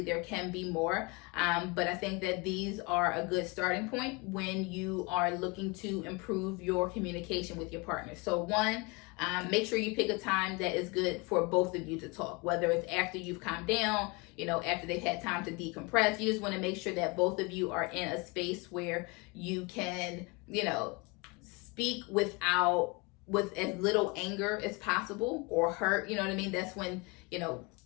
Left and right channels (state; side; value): quieter; right; 27.5 dB